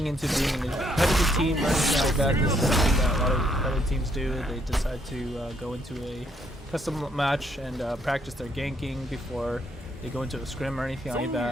into being a competitive team or anything like that, this is something that a lot of competitive teams do. They decide to go into a custom match and practice their ganking before they go into a scrim or anything like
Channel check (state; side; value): normal; both; correlation 0.72